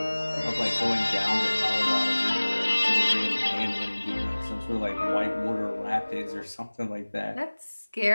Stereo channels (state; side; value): inverted; both; correlation -1.00